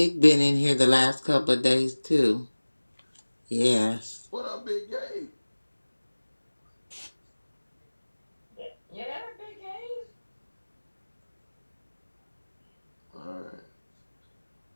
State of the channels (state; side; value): inverted; both; correlation -1.00